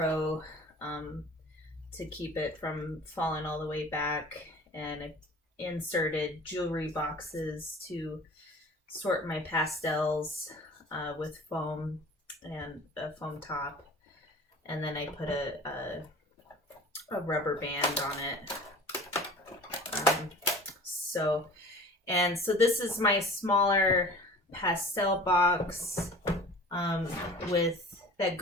to keep it from falling all the way back, and I inserted jewelry boxes to sort my pastels with foam and a foam top, and then I put a rubber band on it. So this is my smaller pastel box with that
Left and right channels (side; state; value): both; normal; correlation 0.42